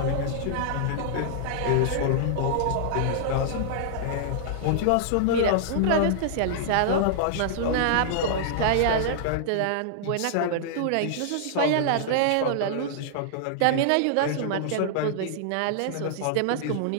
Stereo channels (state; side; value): different; both; correlation -0.01